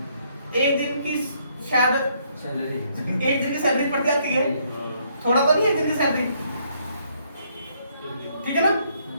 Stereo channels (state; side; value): inverted; both; correlation -0.70